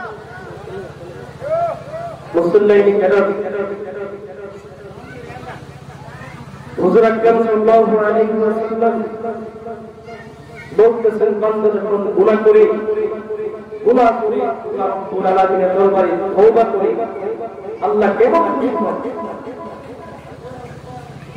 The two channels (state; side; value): identical; both; correlation 1.00